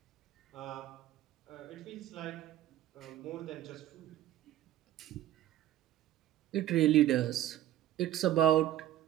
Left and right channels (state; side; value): quieter; left; 13.0 dB